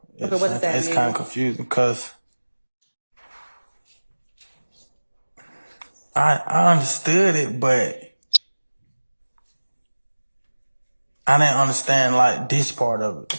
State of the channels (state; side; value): inverted; both; correlation -1.00